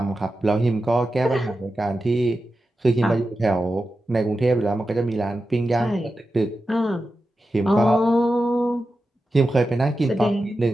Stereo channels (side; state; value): both; normal; correlation 0.91